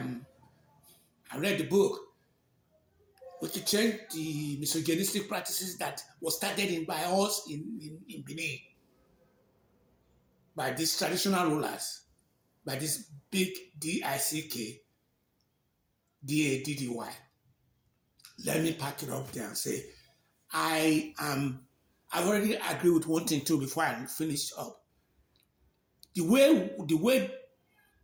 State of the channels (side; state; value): both; identical; correlation 1.00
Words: I read the book. We could change the misogynistic practices that was started by us in Benin, by these traditional rulers, by this big DICK, DADDY. Let me pack it up there and say, I've already agreed with one thing too before I finish up. The way